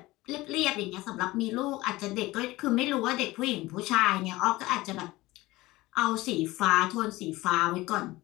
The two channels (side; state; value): right; quieter; 19.3 dB